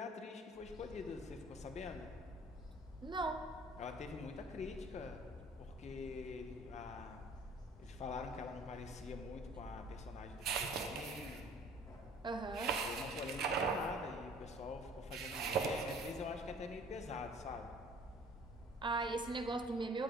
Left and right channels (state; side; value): normal; both; correlation 0.51